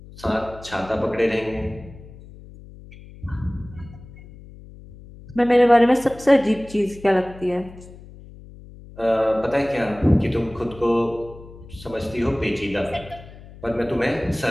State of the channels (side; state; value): left; noise; hum, 18 dB below the sound